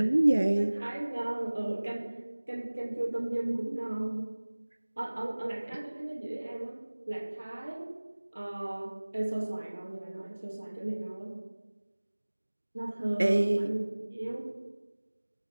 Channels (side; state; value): both; inverted; correlation -1.00